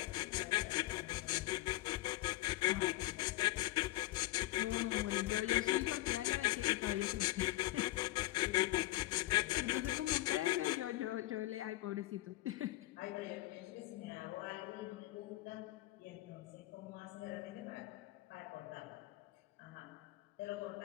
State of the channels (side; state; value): right; quieter; 18.0 dB